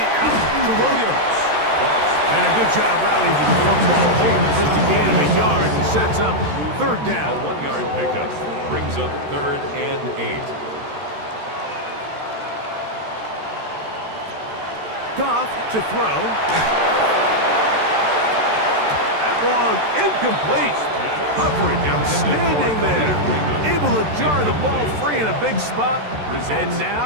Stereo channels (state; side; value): late; left; 13 ms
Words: out to Williams. And a good job rallying to the football. Holding just a gain of a yard and sets up 3rd A down. 1-yard pickup. Brings up 3rd and 8. Goff to throw. That one incomplete. Coverage outstanding there. Able to jar the ball free in a big spot. And